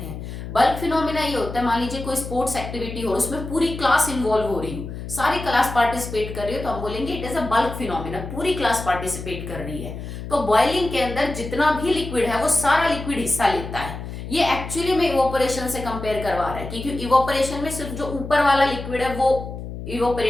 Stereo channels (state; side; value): noise; left; hum, 9 dB below the sound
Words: हैं। बल्क फिनोमिना ये होता है, मान लीजिए कोई स्पोर्ट्स एक्टिविटी हो, उसमें पूरी क्लास इन्वॉल्व हो रही हो, सारी क्लास पार्टिसिपेट कर रही हो, तो हम बोलेंगे it is a bulk phenomena, पूरी क्लास पार्टिसिपेट कर रही है। तो बॉइलिंग के अंदर जितना भी लिक्विड है वो सारा लिक्विड हिस्सा लेता है। ये एक्चुअली में इवोपरेशन से कंपेयर करवा रहा है, क्योंकि इवोपरेशन में सिर्फ जो ऊपर वाला लिक्विड है वो